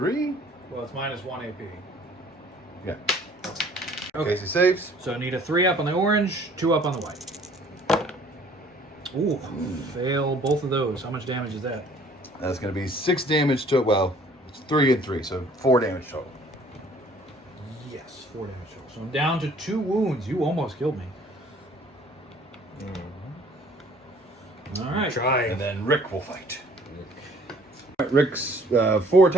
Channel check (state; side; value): normal; both; correlation 0.56